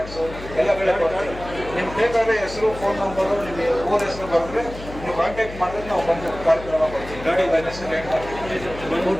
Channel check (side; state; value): left; noise; hum, 13 dB below the sound